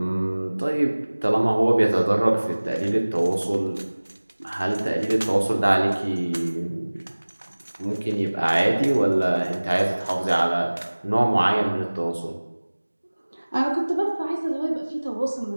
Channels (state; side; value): inverted; both; correlation -1.00